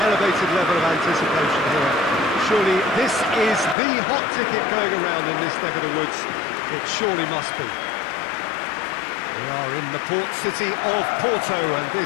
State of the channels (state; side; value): drops out; right; at 3.8 s